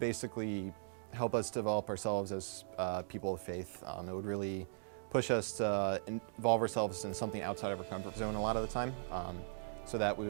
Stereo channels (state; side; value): silent; left; digital silence